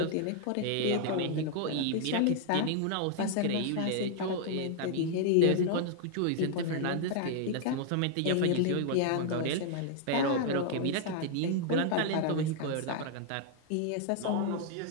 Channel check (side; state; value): both; different; correlation 0.00